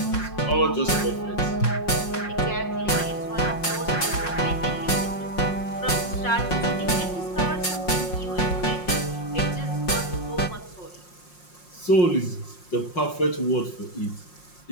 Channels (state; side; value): late; right; 5.6 ms